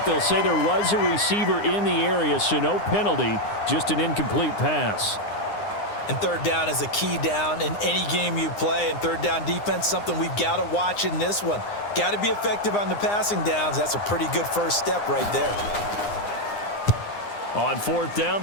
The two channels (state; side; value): late; right; 9.8 ms